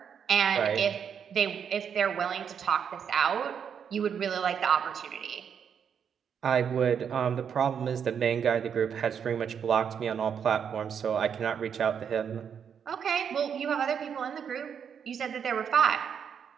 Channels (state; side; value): quieter; left; 7.6 dB